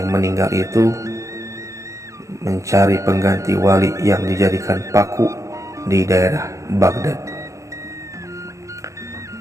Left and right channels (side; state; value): left; late; 0.15 ms